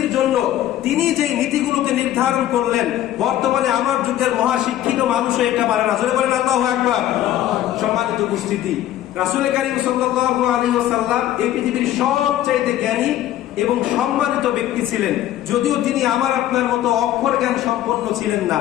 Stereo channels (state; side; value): quieter; right; 12.8 dB